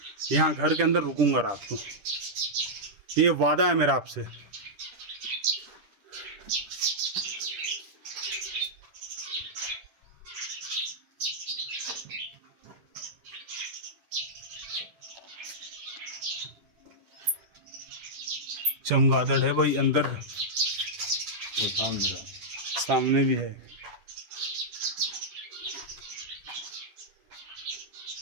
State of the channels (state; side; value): late; left; 10 ms